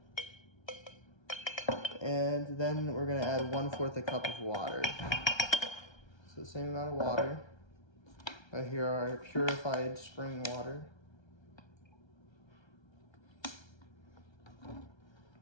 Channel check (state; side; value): late; right; 1.3 ms